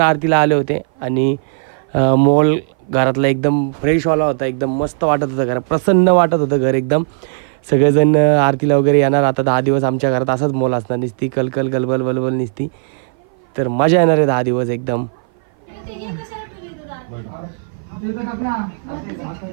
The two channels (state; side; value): silent; left; 58 dB below the other